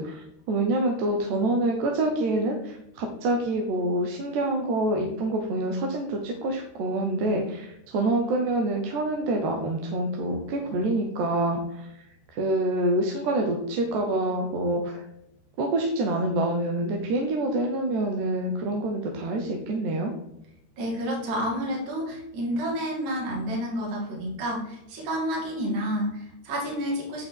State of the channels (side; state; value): left; late; 13 ms